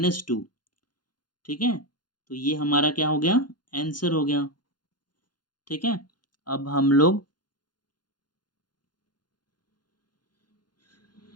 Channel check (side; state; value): right; late; 0.71 ms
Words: ठीक है। तो ये हमारा क्या हो गया, आंसर हो गया, ठीक है। अब हम लोग